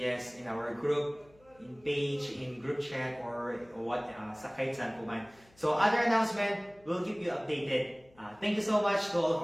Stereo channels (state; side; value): noise; left; hum, 29 dB below the sound